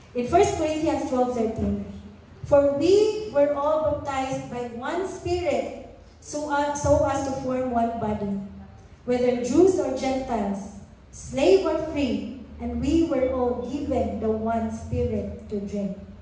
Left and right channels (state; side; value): identical; both; correlation 1.00